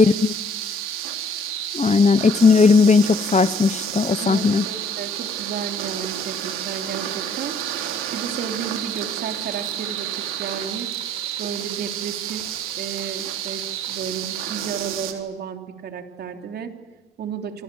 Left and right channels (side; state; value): both; normal; correlation 0.59